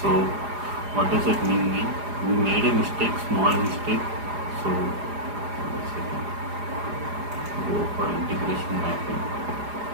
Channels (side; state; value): left; late; 4.9 ms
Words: So what does it mean? We made a mistake, small mistake. So one second. Go for integration mapping.